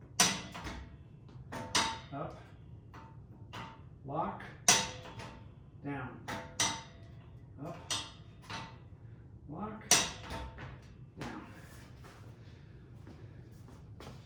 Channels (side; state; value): both; identical; correlation 1.00